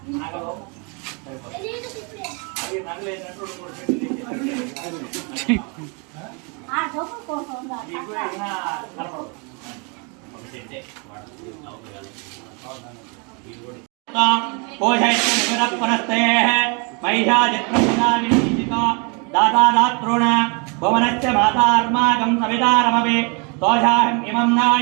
నగలు అది నగలేనట్టు दातादात्रोण भुवनस्य मातार्माकं सवितारमवे तोषाहम् इमं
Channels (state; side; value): quieter; left; 33.5 dB